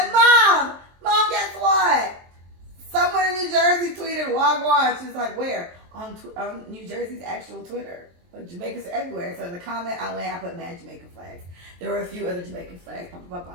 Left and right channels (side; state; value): left; late; 23 ms